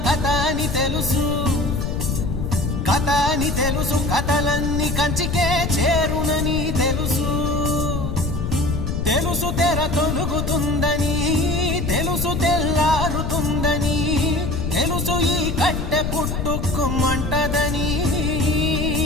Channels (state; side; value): noise; left; rumble, 2 dB below the sound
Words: కథ అని తెలుసు, కథ అని తెలుసు, కథలన్నీ కంచికే చేరునని తెలుసు. తెలుసు తెర తొలుగుతుందని, తెలుసు తెల్లారుతుందని, తెలుసు ఈ కట్టె పుట్టుకుమంటదని,